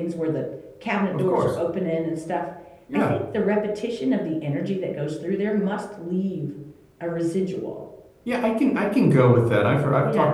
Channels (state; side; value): identical; both; correlation 1.00